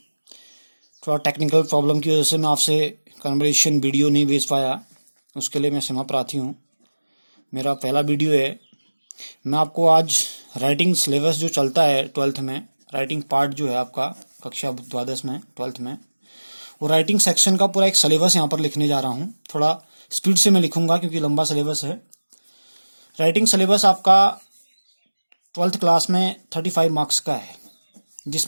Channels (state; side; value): inverted; both; correlation -1.00